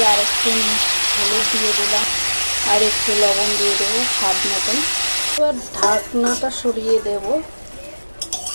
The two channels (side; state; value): both; inverted; correlation -1.00